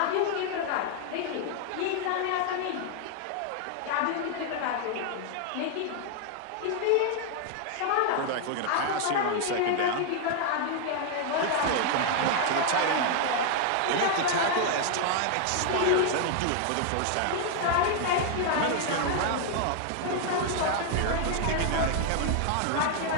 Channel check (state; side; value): different; both; correlation 0.00